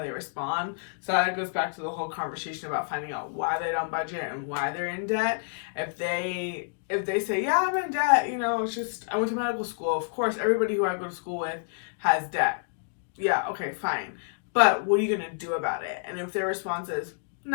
respond. So that goes back to the whole conversation about finding out why they don't budget and why they're in debt. If they say, yeah, I'm in debt, it's just, I went to medical school. Of course, everybody who I go to school with has debt. Yeah, okay, fine. But what are you going to do about it? And if their response is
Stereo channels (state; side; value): silent; right; digital silence